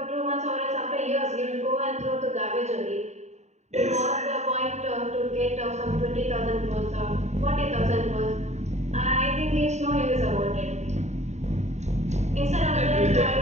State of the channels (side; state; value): left; late; 0.33 ms